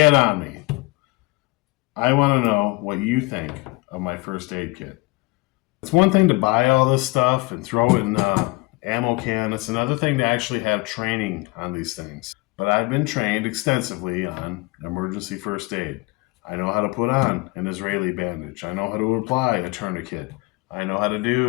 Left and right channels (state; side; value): quieter; right; 23.9 dB